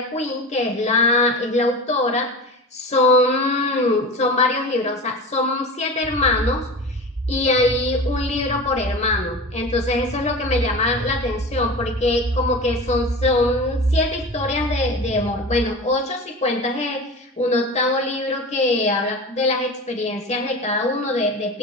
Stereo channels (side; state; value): both; normal; correlation 0.31